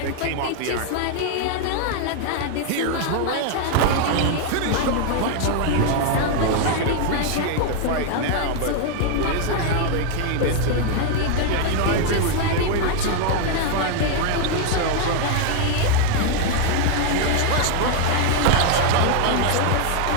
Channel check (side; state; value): both; different; correlation 0.00